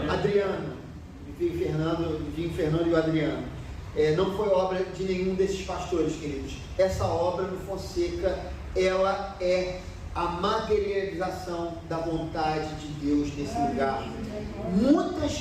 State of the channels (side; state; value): both; identical; correlation 1.00